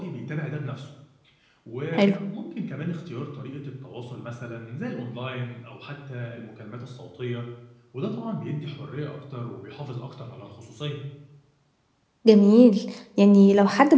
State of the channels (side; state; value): both; identical; correlation 1.00